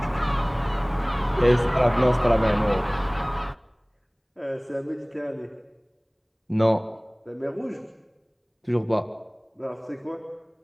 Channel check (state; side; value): identical; both; correlation 1.00